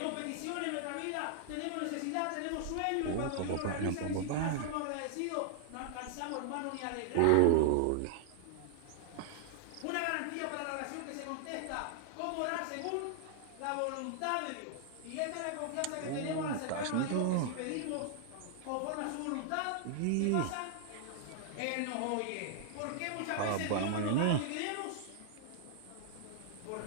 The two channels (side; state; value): both; different; correlation -0.01